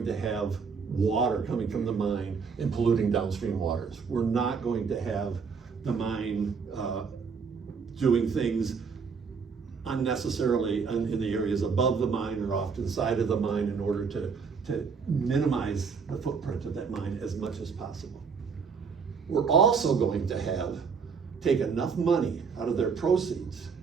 to have water coming from the mine and polluting downstream waters. We're not going to have the mine doing things unnecessarily in the areas above the mine or off to the side of the mine in order to minimize the footprint of that mine as much as possible. We're also going to take enough money out of their proceeds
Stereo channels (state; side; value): quieter; left; 5.6 dB